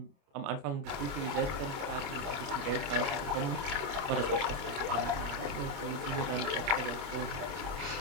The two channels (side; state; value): left; late; 29 ms